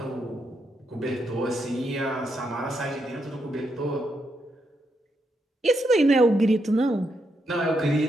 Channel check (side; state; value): both; normal; correlation 0.81